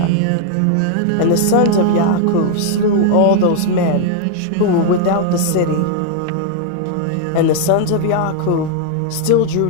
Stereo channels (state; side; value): different; both; correlation -0.01